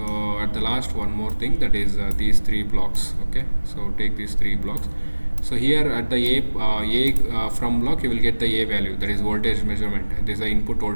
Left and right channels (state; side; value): inverted; both; correlation -1.00